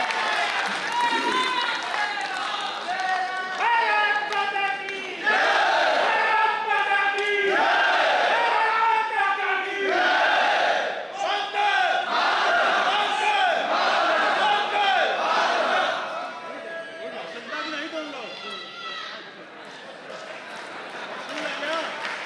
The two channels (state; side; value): identical; both; correlation 1.00